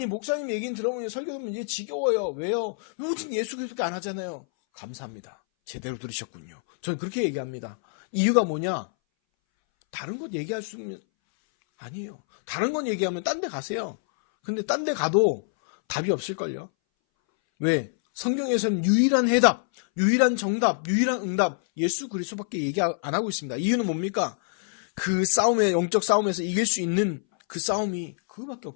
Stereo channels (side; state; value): right; silent; 60 dB below the other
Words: 목사님 얘기는 들어보면 설교 들으면 이제 지겨워요. 왜요? 오직 예수 그리스도밖에 안 하잖아요. 감사합니다. 제대로 들으셨군요. 저는 그렇게 얘기합니다. 이유가 뭐냐? 다른 것 얘기할 수 있는 아니에요. 다른 건 얘기하면 딴 데 가세요. 근데 딴 데 가도 답이 없을걸요. 왜? 성경에서는 유일한 해답, 유일한 정답, 유일한 응답, 예수 그리스도밖에 얘기 안 하고 있습니다. 이유는 뭡니까? 그 싸움에, 영적 싸움에서 이길 수 있는 그 싸움이 그거밖에